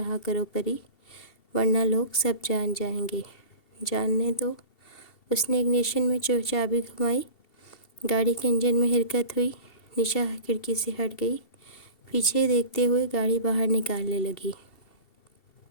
کرو پری، ورنہ لوگ سب جان جائیں گے۔ جاننے دو۔ اس نے اگنیشن میں چابی گھمائی، گاڑی کے انجن میں حرکت ہوئی، نشا کھڑکی سے ہٹ گئی، پیچھے دیکھتے ہوئے گاڑی باہر نکالنے لگی۔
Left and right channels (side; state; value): right; late; 2.7 ms